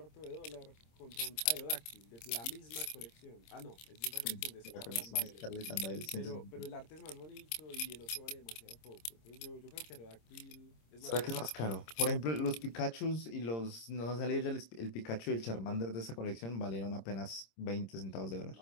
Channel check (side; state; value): right; late; 26 ms